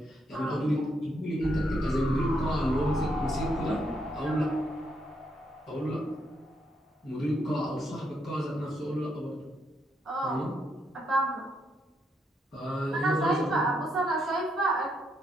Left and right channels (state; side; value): normal; both; correlation 0.77